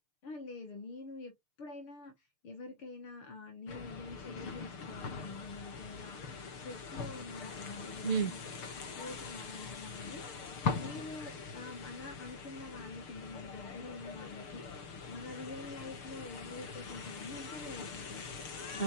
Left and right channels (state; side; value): late; right; 6.7 ms